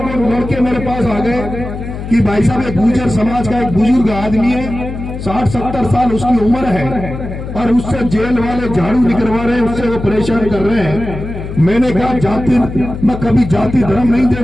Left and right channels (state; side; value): noise; left; hum, 8 dB below the sound